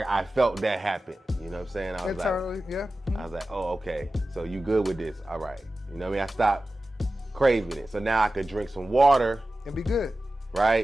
felt that happen. You know what I'm saying? I was internally, yeah. I was like, oh, okay. So you good with this? All right. You know what I mean? I stopped craving it. So now I could drink some water. And be good.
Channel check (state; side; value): normal; both; correlation 0.95